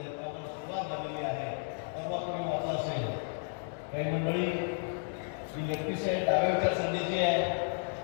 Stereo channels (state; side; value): silent; right; 56 dB below the other